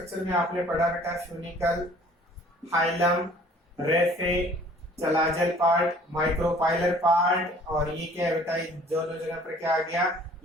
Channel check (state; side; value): normal; both; correlation 0.53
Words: में आपने पढ़ा बेटा, funicle, hilum, raphe, चलाजल part, micropylar part. और ये क्या है बेटा, दोनों जगह पर क्या आ गया,